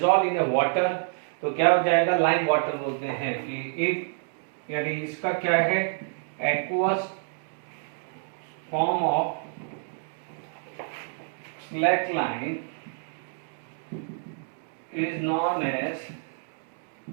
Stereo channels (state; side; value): silent; left; digital silence